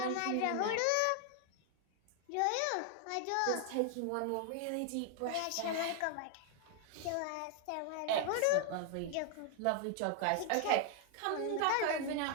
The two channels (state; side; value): different; both; correlation 0.00